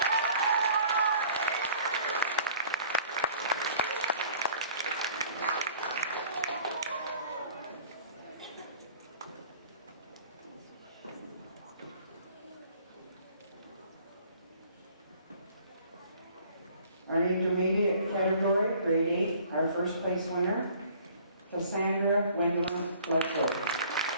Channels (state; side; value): inverted; both; correlation -0.53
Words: Our intermediate category, grade 8, our first place winner, Cassandra Gwendolyn Bledsoe.